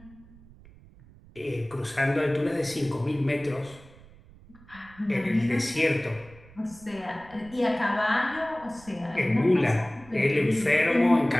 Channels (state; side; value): noise; right; rumble, 23 dB below the sound